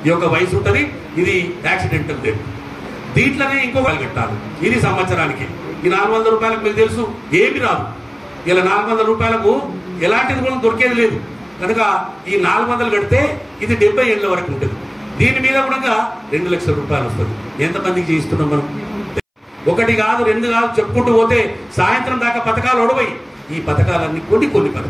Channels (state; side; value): identical; both; correlation 1.00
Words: ఈ యొక్క వయసు ఉంటుంది. ఇది యాక్సిడెంటల్ డెత్. దీంట్లోనే ఇంకో కట్టాలి. ఇది సంవత్సరానికి. ఈ 400 రూపాయలకు మీకు తెలుసు ఏమి రాదు. ఇలా 400 రూపాయలకు ఎలాంటిది కూడా దొరికేది లేదు కనుక ఈ 400 కడితే ఇది 70 ఏళ్ళ వరకు ఉంటుంది. దీని మీద కూడా 2 లక్షల రూపాయలు వస్తుంది. ఎంతమందికి చేయిస్తున్నాం మనం? 1 కాదు 2 కాదు చెప్పుకుంటూ పోతే సాయంత్రం దాకా పథకాలు ఒడవయి. ఈ పథకాలన్నీ కొన్ని